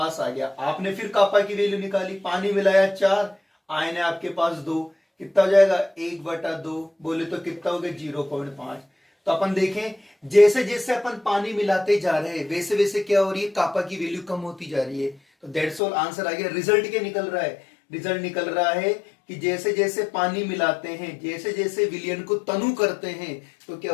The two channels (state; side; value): drops out; right; at 15.8 s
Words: आ गया। आपने फिर कापा की वैल्यू निकाली, पानी मिलाया 4, आयन है आपके पास 2, कितना हो जाएगा? 1/2, बोले तो कितना हो गया? 0.5। तो अपन देखें, जैसे जैसे अपन पानी मिलाते जा रहे हैं वैसे वैसे क्या हो रही है, कापा की वैल्यू कम होती जा रही है। तो दैट्स ऑल, आंसर आ गया। रिजल्ट क्या निकल रहा है? रिजल्ट निकल रहा है कि जैसे जैसे पानी मिलाते हैं, जैसे जैसे विलयन को तनु करते हैं, तो क्या